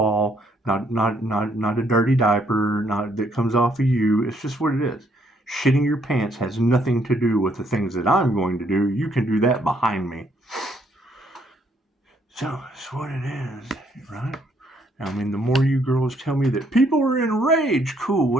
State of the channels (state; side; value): normal; both; correlation 0.69